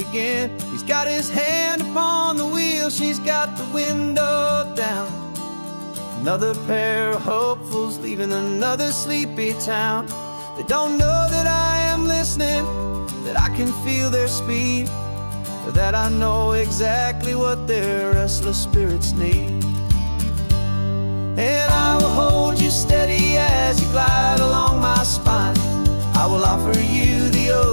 He's got his hand upon the wheel, she's got the window down. Another pair of hopefuls leaving another sleepy town. They don't know that I am listening, that I can feel their speed, or that I know exactly what their restless spirits need. And I will hold you steady as you glide along my spine. I will offer you the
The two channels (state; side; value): inverted; both; correlation -1.00